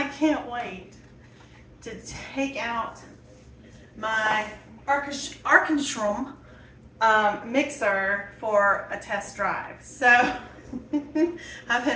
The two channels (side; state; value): both; identical; correlation 1.00